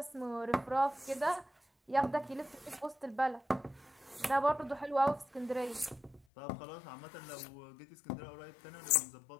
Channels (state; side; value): drops out; right; at 6.2 s